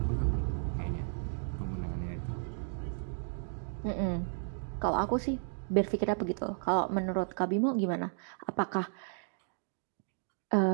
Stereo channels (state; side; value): silent; left; digital silence